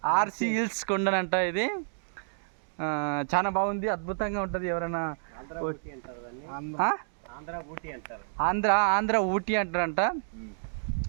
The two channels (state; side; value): silent; left; digital silence